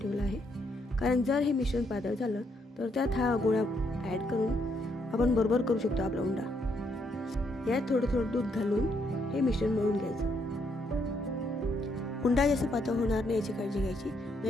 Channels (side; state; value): both; normal; correlation 0.74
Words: आहे, कारण जर हे मिश्रण पातळ झालं तर त्यात हा गोळा ॲड करून आपण बरोबर करू शकतो आपला उंडा. यात थोडं दूध घालून हे मिश्रण मळून घ्यायचं. उंडा जास्त पातळ होणार नाही याची काळजी घ्यायची,